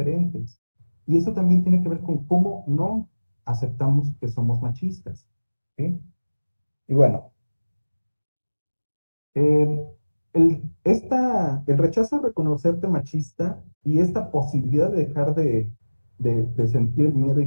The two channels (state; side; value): inverted; both; correlation -1.00